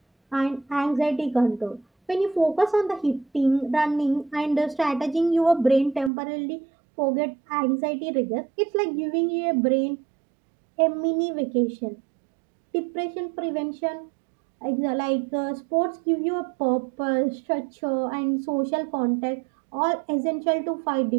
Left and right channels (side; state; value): left; drops out; at 6.1 s